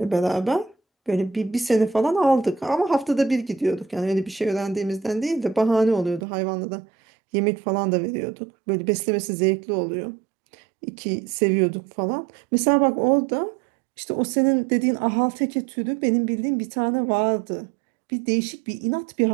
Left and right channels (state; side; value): drops out; left; at 6.2 s